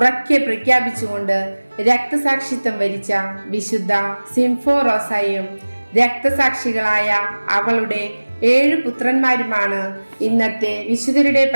പ്രഖ്യാപിച്ചുകൊണ്ട് രക്തസാക്ഷിത്വം വരിച്ച വിശുദ്ധ സിംഫോറോസയും രക്തസാക്ഷികളായ അവളുടെ 7 പുത്രന്മാരുമാണ് ഇന്നത്തെ വിശുദ്ധരുടെ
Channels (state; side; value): inverted; both; correlation -1.00